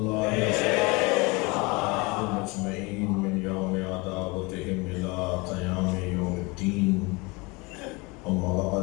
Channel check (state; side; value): quieter; right; 26.4 dB